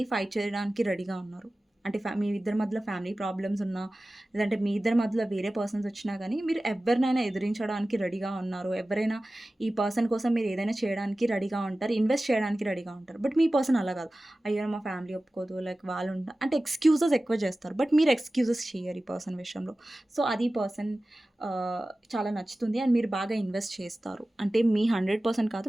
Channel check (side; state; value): both; normal; correlation 0.96